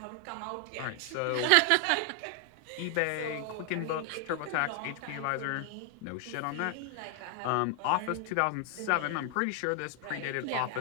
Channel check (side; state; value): both; different; correlation 0.00